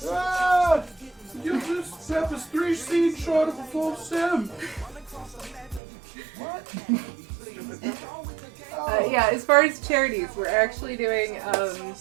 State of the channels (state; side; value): drops out; left; at 5.8 s